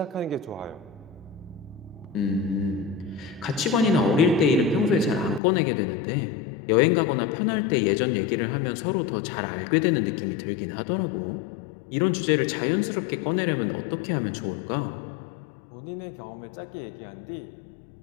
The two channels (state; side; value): drops out; right; at 5.4 s